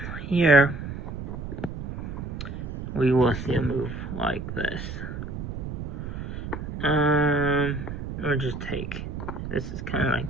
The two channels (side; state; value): right; noise; rumble, 6 dB below the sound